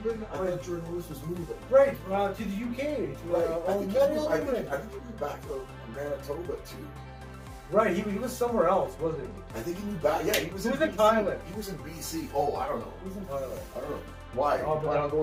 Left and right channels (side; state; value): both; identical; correlation 1.00